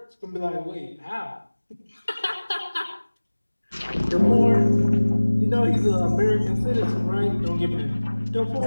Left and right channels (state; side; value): inverted; both; correlation -1.00